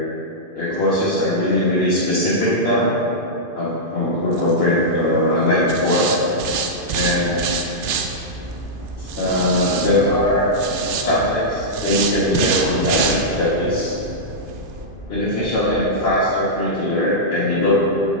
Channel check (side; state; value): left; late; 2.5 ms